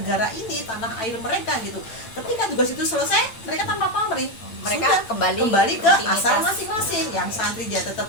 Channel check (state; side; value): late; right; 8.9 ms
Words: ini, tanah air mereka gitu. Ketika tugas itu selesai, mereka tanpa pamrih, mereka kembali ke asal masing-masing. Yang santri dia